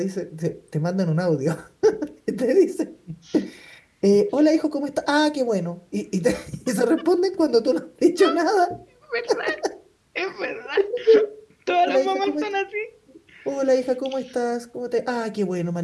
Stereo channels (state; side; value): identical; both; correlation 1.00